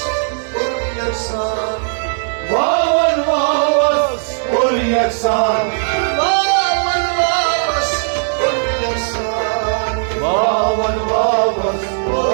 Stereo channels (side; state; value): left; silent; digital silence